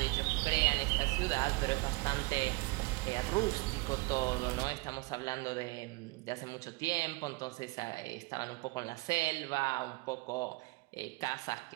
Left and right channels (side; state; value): left; quieter; 24.3 dB